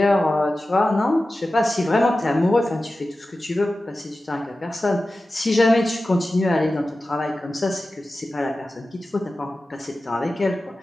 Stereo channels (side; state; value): both; normal; correlation 0.95